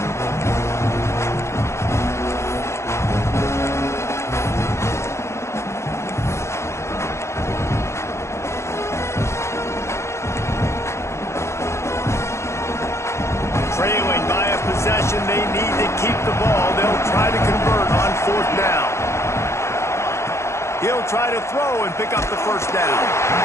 Trailing by a possession, they need to keep the ball. They'll try to convert on 4th down. He'll try to throw and pick up the 1st down.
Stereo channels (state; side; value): late; right; 0.13 ms